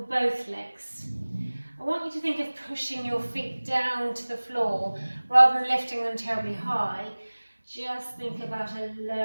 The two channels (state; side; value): inverted; both; correlation -1.00